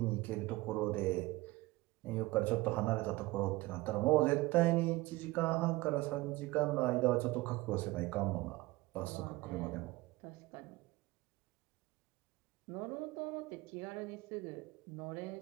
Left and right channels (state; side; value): quieter; left; 20.2 dB